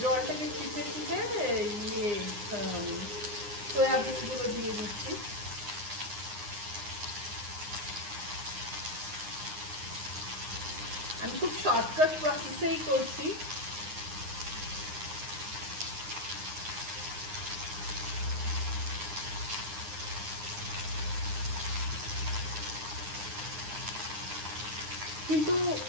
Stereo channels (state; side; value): late; left; 9.7 ms